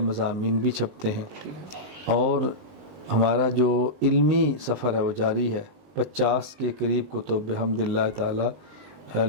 مضامین بھی چھپتے ہیں، اور ہمارا جو علمی سفر ہے وہ جاری ہے۔ 50 کے قریب کتب بحمد اللہ تعالیٰ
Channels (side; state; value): left; late; 20 ms